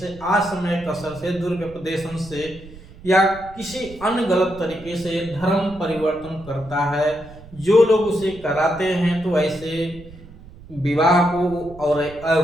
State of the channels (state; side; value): noise; right; rumble, 19 dB below the sound